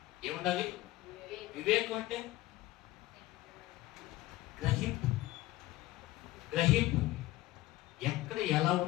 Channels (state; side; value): quieter; right; 17.1 dB